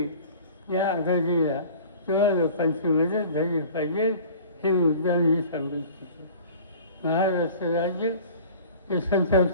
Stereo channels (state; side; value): inverted; both; correlation -0.44